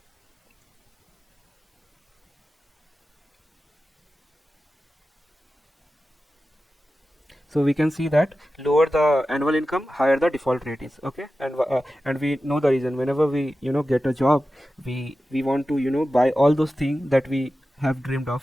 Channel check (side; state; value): both; normal; correlation 0.93